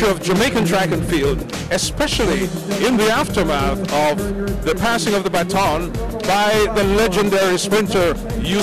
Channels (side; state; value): both; identical; correlation 1.00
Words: of Jamaican track and field, especially in the aftermath of the passing of the baton by the legendary sprinter